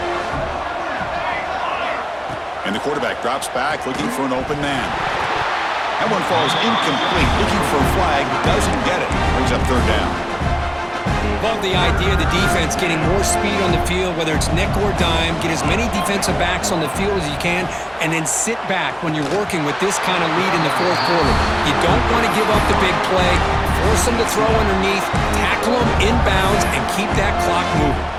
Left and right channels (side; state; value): both; identical; correlation 1.00